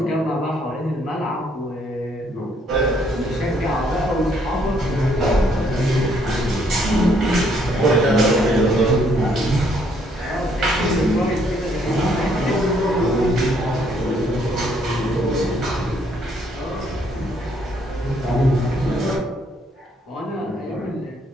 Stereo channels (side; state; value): both; normal; correlation 0.68